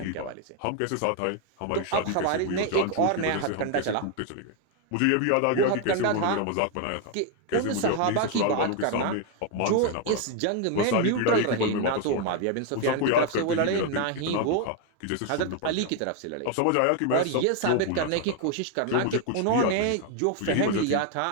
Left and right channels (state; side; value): different; both; correlation 0.01